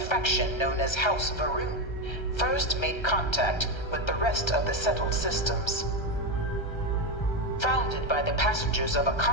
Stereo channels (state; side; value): late; right; 1.3 ms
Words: known as House Varun first made contact with the rest of the settled systems. Founded by the passengers of a